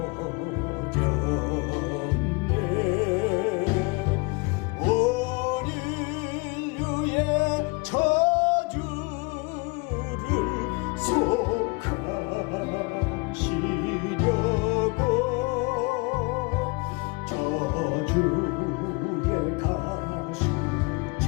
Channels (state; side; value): quieter; right; 29.1 dB